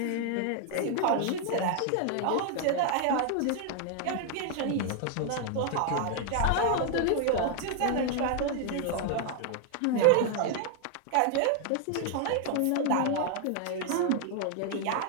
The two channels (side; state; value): both; different; correlation 0.00